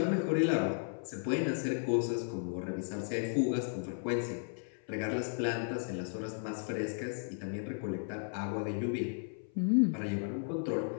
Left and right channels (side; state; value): right; silent; 55 dB below the other